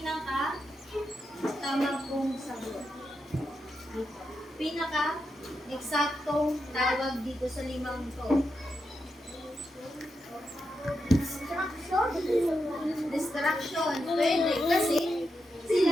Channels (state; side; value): normal; both; correlation 0.86